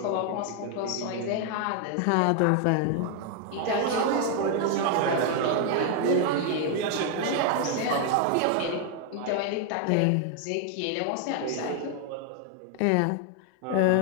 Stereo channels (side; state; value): both; different; correlation 0.00